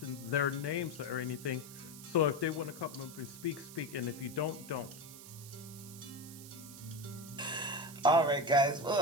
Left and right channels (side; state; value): right; noise; hiss, 15 dB below the sound